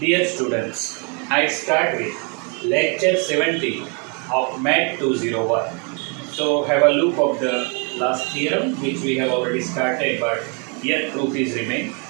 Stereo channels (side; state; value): left; quieter; 35.5 dB